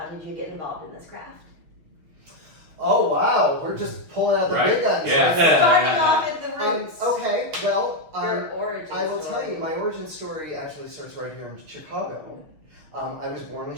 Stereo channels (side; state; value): left; late; 6.5 ms